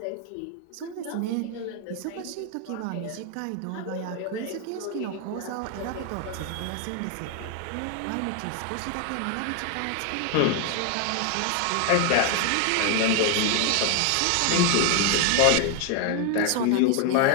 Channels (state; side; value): different; both; correlation 0.01